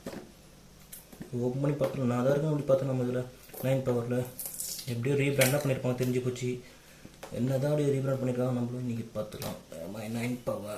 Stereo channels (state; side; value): identical; both; correlation 1.00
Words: ஓப்பன் பண்ணி பார்த்துக்கலாம். நான் தான் இருக்குன்னு அப்படி பார்த்தேன். நம்ம இதில் 9 பவரில் எப்படியும் ரீபிராண்டாக பண்ணியிருப்பாங்க, தெரிஞ்சு போச்சு. என்ன தான் அப்படி ரீபிராண்ட் பண்ணியிருக்காங்க நம்மளும் இன்றைக்கி பார்த்துக்கலாம். 9